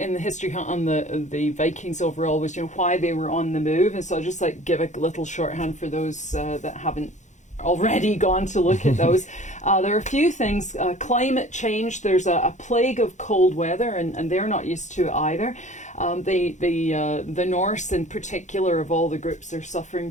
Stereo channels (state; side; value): late; right; 0.35 ms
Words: the history hunt on the Vikings overall was why they were on the move. And so I'll just give a little shorthand for those that haven't already gone to look at those. There are a few things. Climate change, there's a plague of cold weather, and they're not used to it either. The Norse in particular, of all the groups, are suffering